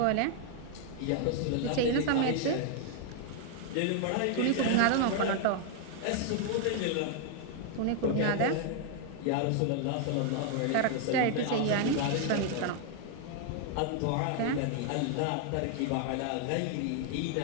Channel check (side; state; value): both; different; correlation 0.00